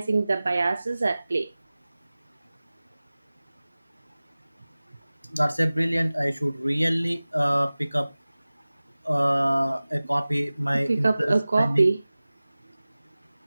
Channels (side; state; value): both; inverted; correlation -0.98